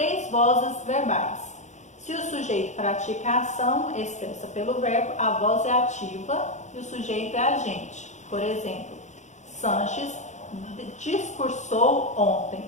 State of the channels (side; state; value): right; late; 0.34 ms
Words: vozes verbais. Se o sujeito pratica a ação expressa pelo verbo, a voz é ativa e o sujeito é agente. Por exemplo, Sanches discursou ontem.